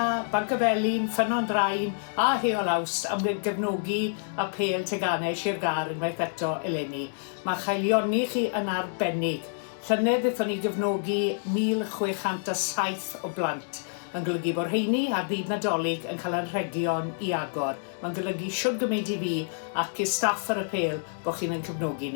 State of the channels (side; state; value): right; silent; digital silence